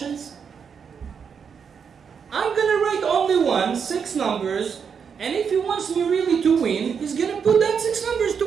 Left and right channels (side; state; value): left; quieter; 6.7 dB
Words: I'm going to write only 6 numbers, and if he wants me really to win, he's going to put that 6 numbers to